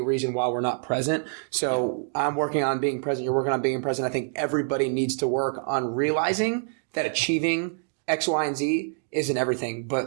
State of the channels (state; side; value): silent; left; digital silence